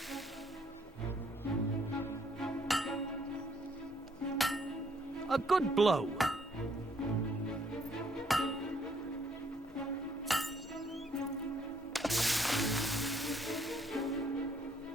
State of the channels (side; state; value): both; normal; correlation 0.67